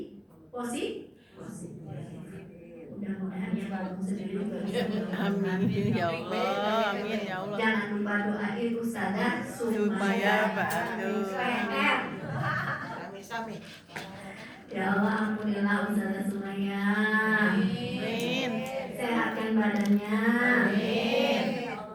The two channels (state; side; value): identical; both; correlation 1.00